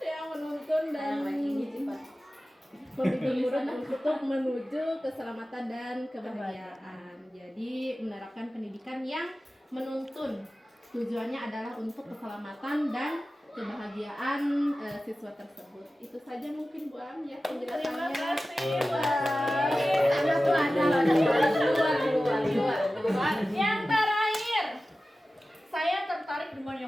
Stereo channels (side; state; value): both; normal; correlation 0.95